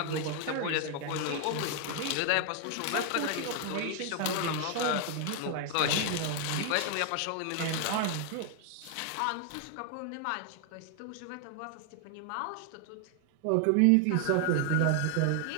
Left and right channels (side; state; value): both; different; correlation 0.00